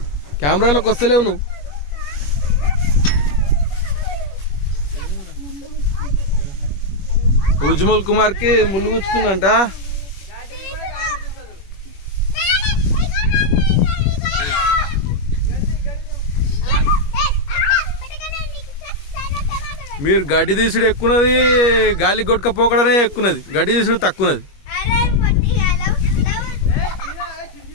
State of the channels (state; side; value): late; right; 21 ms